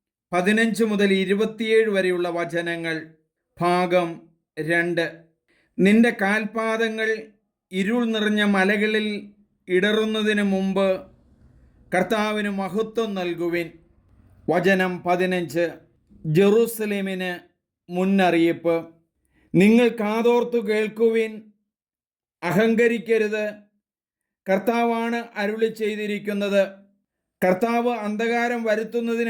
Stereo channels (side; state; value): both; identical; correlation 1.00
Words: 15 മുതൽ 27 വരെയുള്ള വചനങ്ങൾ. ഭാഗം 2. നിന്റെ കാൽപാദങ്ങൾ ഇരുൾ നിറഞ്ഞ മലകളിൽ ഇടറുന്നതിന് മുമ്പ് കർത്താവിന് മഹത്വം നൽകുവിൻ. വചനം 15. ജെറൂസലേമിന് മുന്നറിയിപ്പ്. നിങ്ങൾ കാതോർത്തു കേൾക്കുവിൻ, അഹങ്കരിക്കരുത്. കർത്താവാണ് അരുളി ചെയ്തിരിക്കുന്നത്. കർത്താവ് അന്ധകാരം